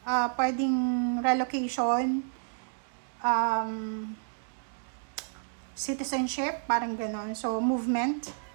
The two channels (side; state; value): left; silent; digital silence